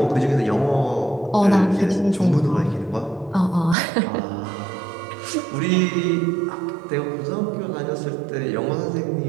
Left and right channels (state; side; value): drops out; left; at 3.8 s